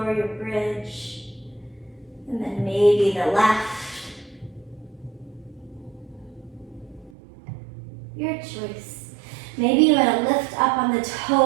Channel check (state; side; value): drops out; left; at 7.1 s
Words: your bridge. And then maybe the left. Your choice. Maybe you want to lift up on the